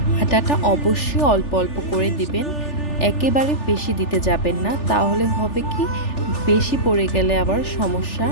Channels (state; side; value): late; right; 3.4 ms